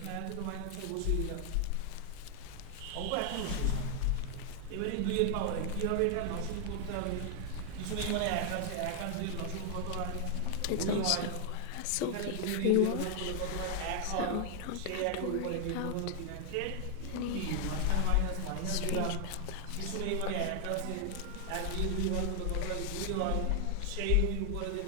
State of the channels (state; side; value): different; both; correlation 0.00